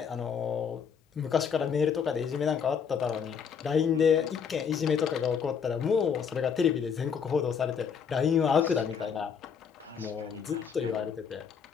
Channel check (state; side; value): quieter; right; 6.8 dB